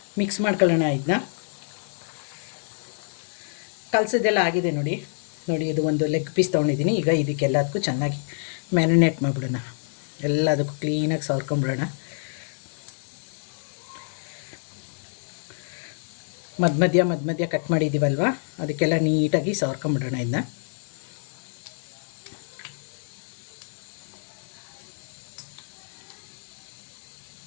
ಮಿಕ್ಸ್ ಮಾಡ್ಕೊಳ್ಳೋಣ. ಇದನ್ನ ಕಲಸಿದ್ದೆಲ್ಲ ಆಗಿದೆ. ನೋಡಿ, ಇದು ಒಂದು ಲೆಗ್ ಪೀಸ್ ತೊಗೊಂಡಿದ್ದೀನಿ. ಈಗ ಇದಕ್ಕೆಲ್ಲದಕ್ಕೂ ಚೆನ್ನಾಗಿ ಮ್ಯಾರಿನೇಟ್ ಮಾಡಿಬಿಡೋಣ. ಎಲ್ಲದಕ್ಕೂ ಕ್ಲೀನಾಗಿ ಸವರ್ಕೊಂಬಿಡೋಣ. ಮಧ್ಯ ಕಟ್ ಮಾಡಿದ್ದೀವಲ್ವ, ಅದಕ್ಕೆಲ್ಲ ನೀಟಾಗಿ ಸವರ್ಕೊಂಬಿಡೋಣ. ಇದನ್ನ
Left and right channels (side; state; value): right; silent; 56 dB below the other